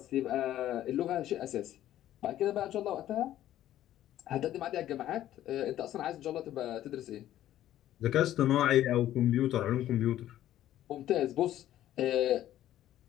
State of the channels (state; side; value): quieter; right; 12.8 dB